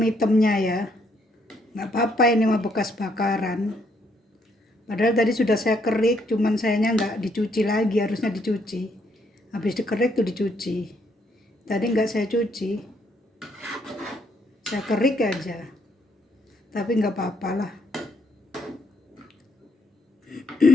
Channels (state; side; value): normal; both; correlation 0.72